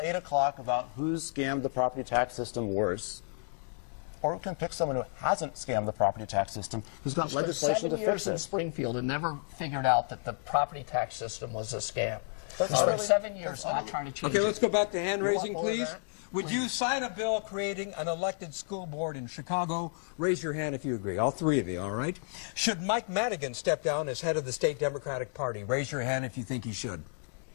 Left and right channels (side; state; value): right; silent; 57 dB below the other